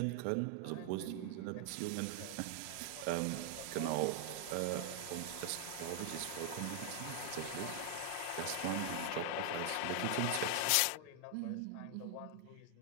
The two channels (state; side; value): different; both; correlation 0.00